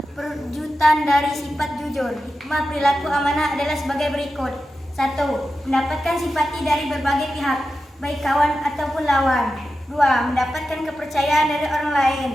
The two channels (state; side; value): normal; both; correlation 0.91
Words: perwujudan dari sifat jujur. Hikmah perilaku amanah adalah sebagai berikut. 1. Mendapatkan simpati dari berbagai pihak, baik kawan ataupun lawan. 2. Mendapatkan kepercayaan dari orang lain.